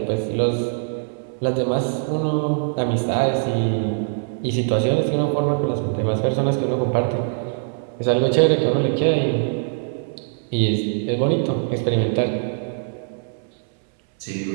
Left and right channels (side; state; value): left; silent; 64 dB below the other